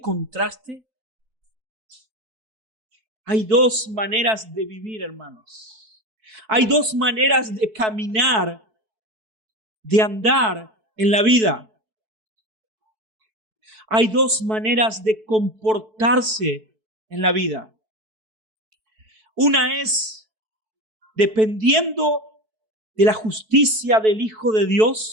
contraste? Hay dos maneras de vivir, hermanos. Hay dos maneras de caminar, de andar en la vida. Hay dos maneras de comportarse en la vida. Una es dependiendo de la justicia del Hijo de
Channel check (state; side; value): late; left; 4.6 ms